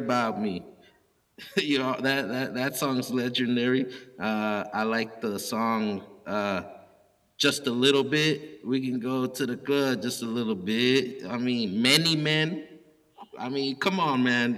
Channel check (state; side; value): identical; both; correlation 1.00